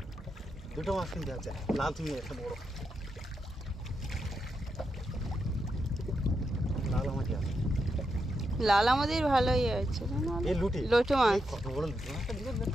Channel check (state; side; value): normal; both; correlation 0.84